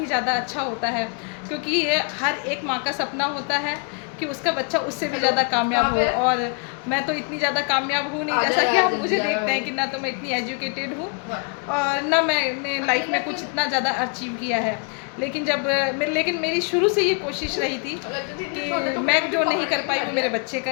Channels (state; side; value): quieter; right; 36.9 dB